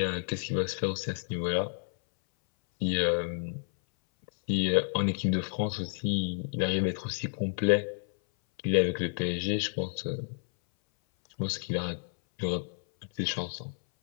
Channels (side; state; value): right; silent; 58 dB below the other